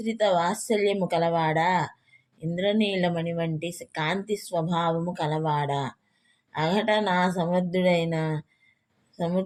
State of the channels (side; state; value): both; identical; correlation 1.00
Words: వాత్సల్యము కలవాడా, ఇంద్రనీలమణి వంటి కాంతి స్వభావము కలవాడా, అఘట నా